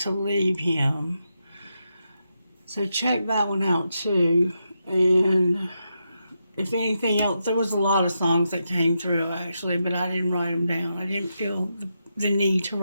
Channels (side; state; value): both; inverted; correlation -0.85